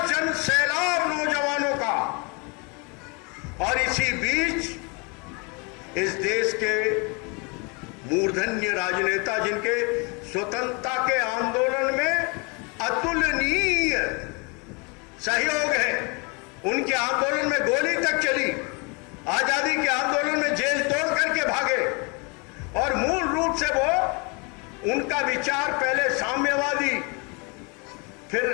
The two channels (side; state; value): right; quieter; 31.1 dB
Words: जन सैलाब नौजवानों का। और इसी बीच इस देश के मूर्धन्य राजनेता, जिनके स्वतंत्रता के आंदोलन में अतुलनीय सहयोग है, उनके आंदोलन में गोली तक चली, आजादी के आंदोलन में जेल तोड़ करके भागे। और मूल रूप से वो, उनका विचार पहले साम्यवादी, फिर